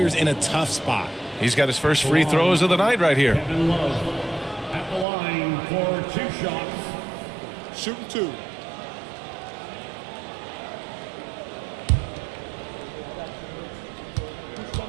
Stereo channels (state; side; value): drops out; left; at 5.1 s